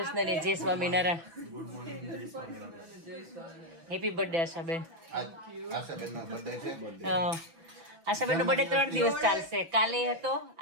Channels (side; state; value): left; late; 6.0 ms